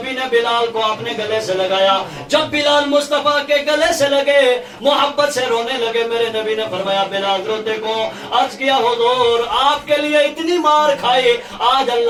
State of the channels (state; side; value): identical; both; correlation 1.00